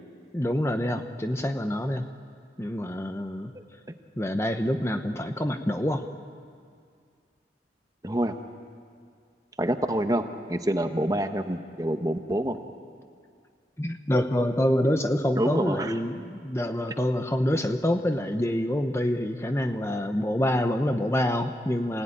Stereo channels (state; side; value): normal; both; correlation 0.85